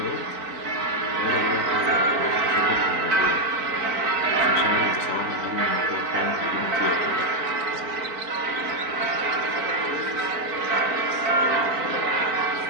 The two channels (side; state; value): left; late; 3.9 ms